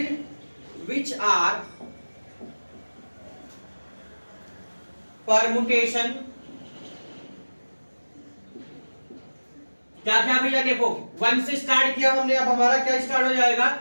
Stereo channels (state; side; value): inverted; both; correlation -1.00